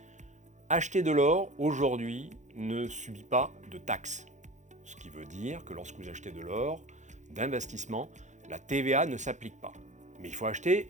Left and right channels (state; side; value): late; left; 0.35 ms